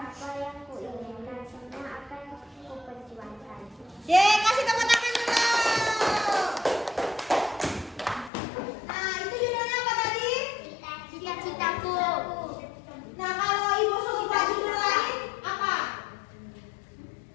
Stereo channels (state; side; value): drops out; right; at 8.3 s